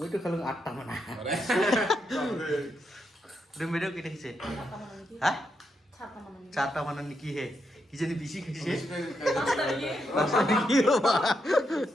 তো খালো 8টা মানা তুমি মেয়েও কেটে খেয়েছে হ্যাঁ 4টা মানা নাকি হে কি জানি বেশি খেয়েছে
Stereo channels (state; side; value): normal; both; correlation 0.82